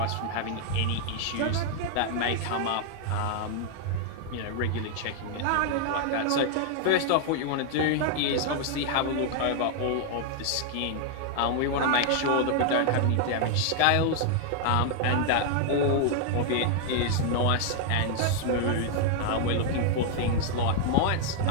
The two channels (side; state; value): both; different; correlation 0.00